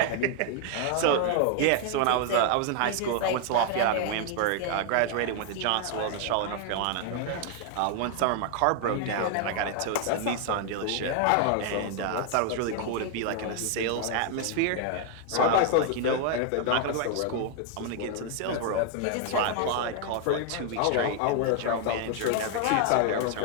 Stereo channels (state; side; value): different; both; correlation 0.00